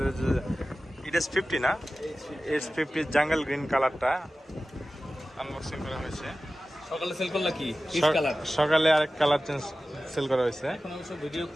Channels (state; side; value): normal; both; correlation 0.95